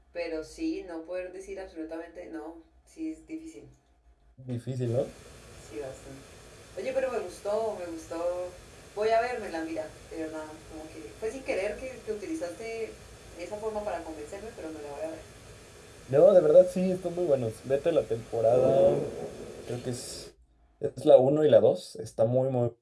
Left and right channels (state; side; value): identical; both; correlation 1.00